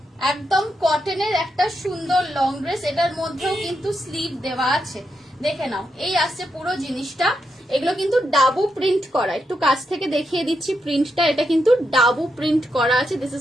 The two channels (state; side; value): normal; both; correlation 0.83